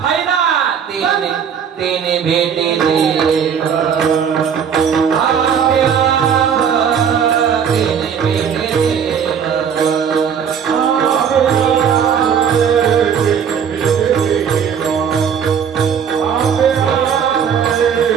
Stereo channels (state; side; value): quieter; left; 7.6 dB